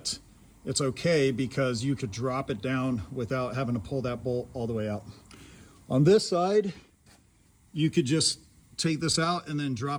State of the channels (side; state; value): both; identical; correlation 1.00